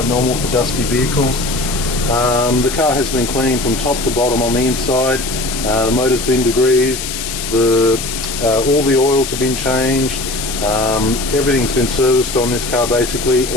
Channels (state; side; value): noise; left; hiss, 6 dB below the sound